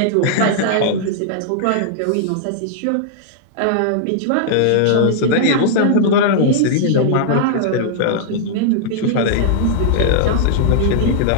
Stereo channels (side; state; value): both; different; correlation -0.01